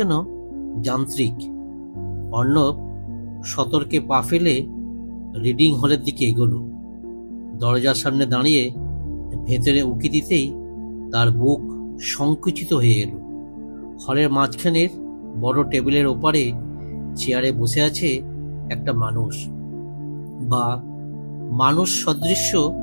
যান্ত্রিক। অর্ণব সতর্কে পা ফেলে রিডিং হলের দিকে এগোলো। দরজার সামনে দাঁড়িয়ে ভেতরে উঁকি দিতেই তার বুক সংকুচিত হয়ে এলো। হলের মাঝখানের বড় টেবিলের ওপারে চেয়ারে বসে আছে একটা মানুষ, বা মানুষ সদৃশ্য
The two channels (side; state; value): both; inverted; correlation -1.00